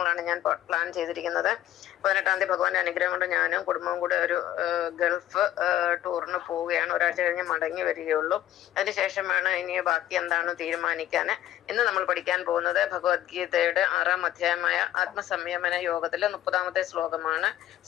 ഞാൻ പ്ലാൻ ചെയ്തിരിക്കുന്നത്. 18-ാം തീയതി ഭഗവാന്റെ അനുഗ്രഹം കൊണ്ട് ഞാനും കുടുംബവും കൂടെ ഒരു ഗൾഫ് ടൂറിന് പോവുകയാണ്. ഒരാഴ്ച കഴിഞ്ഞ് മടങ്ങി വരികയുള്ളൂ. അതിനുശേഷമാണ് ഇനി ബാക്കി എന്താണ് തീരുമാനിക്കാൻ. ഇന്ന് നമ്മൾ പഠിക്കാൻ പോകുന്നത് ഭഗവത്ഗീതയുടെ 6-ാം അധ്യായമായ ആത്മസംയമന യോഗത്തിലെ 30-ാമത്തെ ശ്ലോകമാണ്.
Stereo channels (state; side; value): quieter; right; 12.8 dB